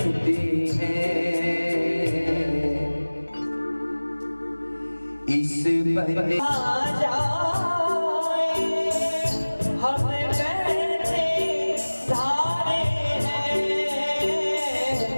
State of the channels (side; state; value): both; inverted; correlation -1.00